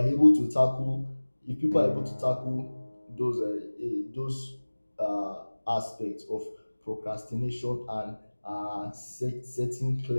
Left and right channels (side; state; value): both; inverted; correlation -1.00